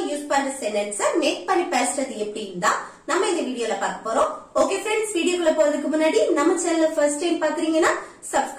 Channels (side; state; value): both; identical; correlation 1.00